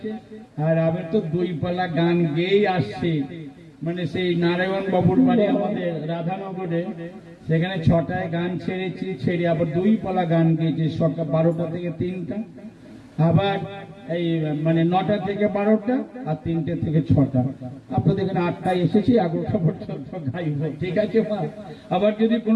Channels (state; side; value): identical; both; correlation 1.00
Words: আর আমি তো 2 পালা গান গেয়েই আসছি। মানে সেই নারায়ণ বাবুর বাড়ি আমাদের রাধানগরে, সেখানে 6টায় গান ছেড়েছি, ছেড়ে আবার 2 পালা গান গেয়েছি, সকাল 12টা থেকে 3টা, আবার এই মানে 9টা থেকে 12টা, আর 3টে থেকে 6টা। আপনাদের এখানে 8টায় এসেছি, 11টা পর্যন্ত গাইব, ঠিক আছে মা? আবার যদি